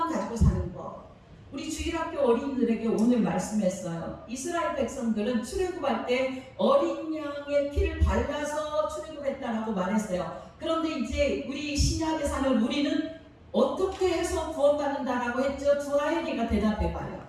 가지고 사는 것. 우리 주일학교 어린이들에게 오늘 말씀했어요. 이스라엘 백성들은 출애굽할 때 어린 양의 피를 발라서 출애굽했다라고 말했어요. 그런데 이제 우리 신약에 사는 우리는 어떻게 해서 구원받는다라고 했죠? 두아엘이가 대답해봐요.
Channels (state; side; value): identical; both; correlation 1.00